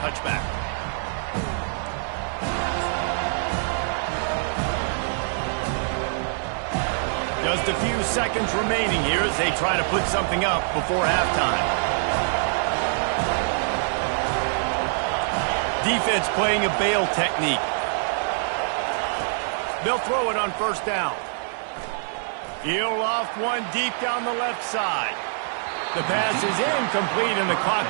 Just a few seconds remaining here as they try to put something up before halftime. Defense playing a bail technique. They'll throw it on 1st down. He'll off one deep down the left side. The pass is incomplete, and the clock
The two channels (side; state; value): left; silent; digital silence